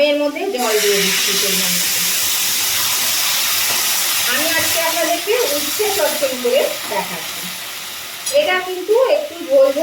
এর মধ্যে জল দিয়ে দিচ্ছি পরিমাণ। আমি আজকে আপনাদেরকে উচ্ছে চচ্চড়ি করে দেখাচ্ছি। এটা কিন্তু একটু ঝোল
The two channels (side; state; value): both; identical; correlation 1.00